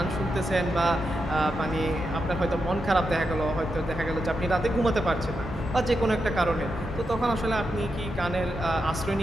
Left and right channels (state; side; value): normal; both; correlation 0.86